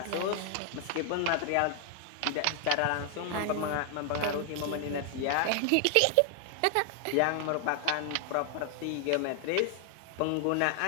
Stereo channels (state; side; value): different; both; correlation 0.00